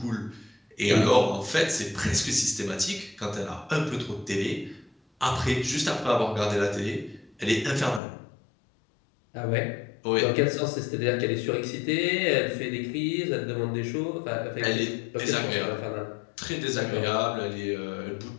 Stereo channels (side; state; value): right; drops out; at 8.0 s